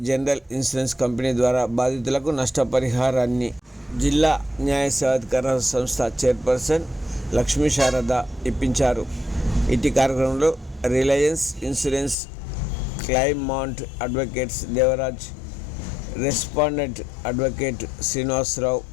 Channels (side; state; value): right; drops out; at 12.2 s